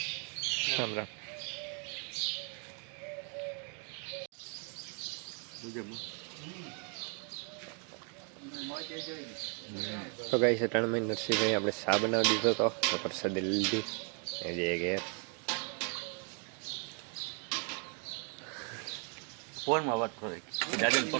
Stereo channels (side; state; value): left; quieter; 39.6 dB